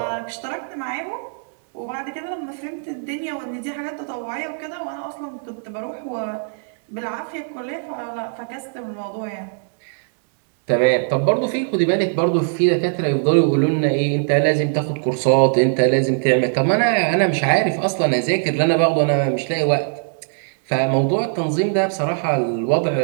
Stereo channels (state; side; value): silent; left; digital silence